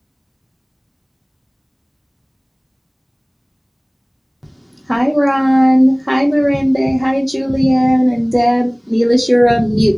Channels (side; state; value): both; identical; correlation 1.00